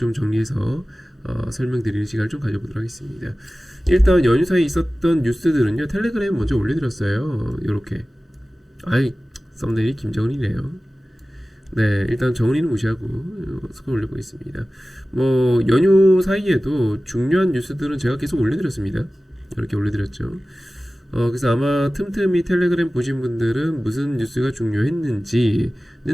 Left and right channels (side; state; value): both; normal; correlation 0.96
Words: 정리해서 설명드리는 시간을 좀 가져보도록 하겠습니다. 일단 연휴 사이에 있었던 뉴스들은요, 텔레그램에 먼저 올려드렸어요. 요렇게. 썸네일이 김정은이네요. 네, 일단 정은이는 무시하고 스크롤 올려보겠습니다. 뭐 연휴 사이에도 중요한 뉴스들은 제가 계속 올려드렸습니다. 이렇게 올려드렸죠. 그래서 아마 틈틈이 텔레그램 보신 분들은 무슨 뉴스가 중요했는지는